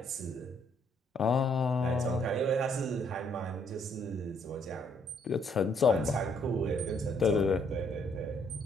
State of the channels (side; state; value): both; normal; correlation 0.68